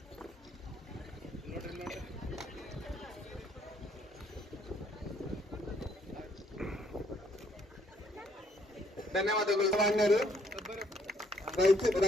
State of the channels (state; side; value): normal; both; correlation 0.67